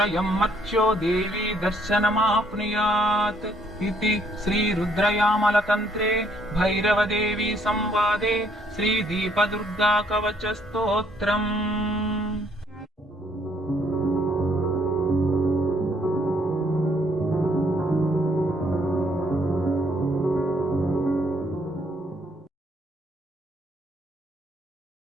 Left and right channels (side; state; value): both; normal; correlation 0.67